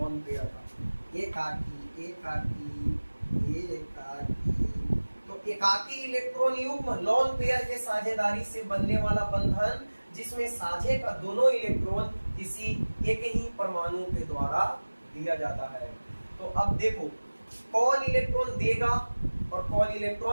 पेयर का, एकाकी एकाकी एकाकी। तो एकाकी इलेक्ट्रॉन युग्म लॉन पेयर के साझेदारी से बनने वाला बंधन जिसमें साझे का दोनों इलेक्ट्रॉन किसी एक ही परमाणु के द्वारा दिया जाता है। तो अब देखो कौन इलेक्ट्रॉन देगा और कौन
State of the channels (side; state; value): both; inverted; correlation -1.00